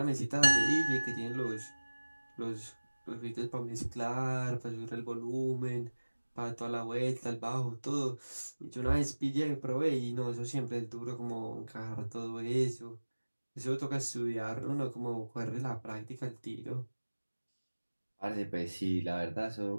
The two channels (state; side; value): inverted; both; correlation -1.00